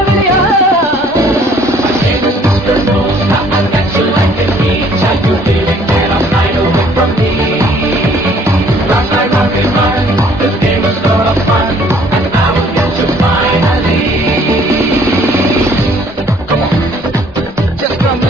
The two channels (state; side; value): normal; both; correlation 0.59